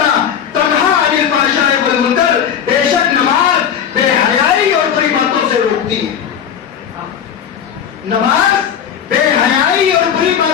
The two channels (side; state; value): right; quieter; 8.5 dB